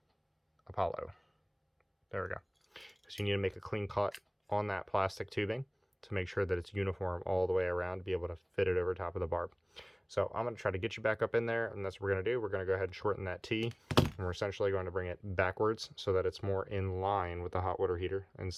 Apollo. There we go. Because you need to make a clean cut on that plastic tubing to make sure that it's uniform all the way around to be able to fit it over top of the barb. So I'm going to try to get you back up in there, and that's what we're going to do. We're going to go ahead and shorten that T, and we're essentially going to bring it backwards so that it's more in line with the hot water heater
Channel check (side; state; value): both; identical; correlation 1.00